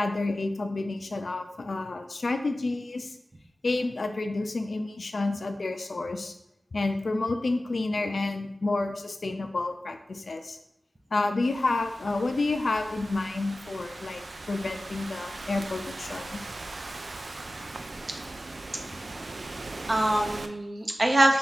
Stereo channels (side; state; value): both; normal; correlation 0.95